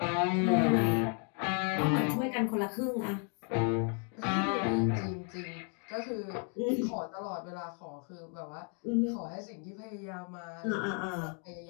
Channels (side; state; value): right; quieter; 39.0 dB